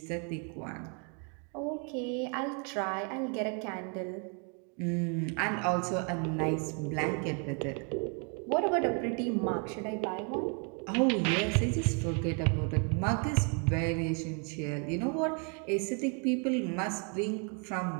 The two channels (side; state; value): left; quieter; 38.9 dB